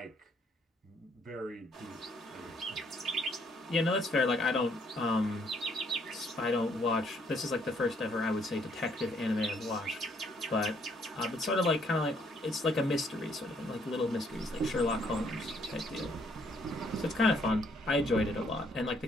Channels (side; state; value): both; normal; correlation 0.67